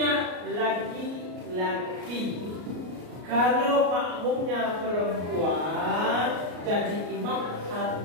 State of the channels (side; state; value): left; late; 33 ms